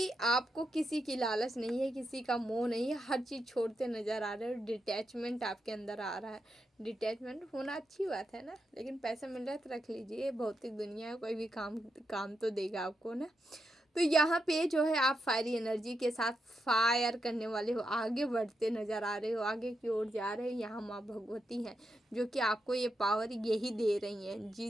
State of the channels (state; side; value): normal; both; correlation 0.84